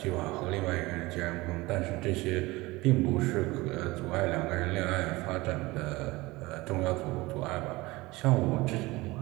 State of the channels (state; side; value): quieter; left; 21.2 dB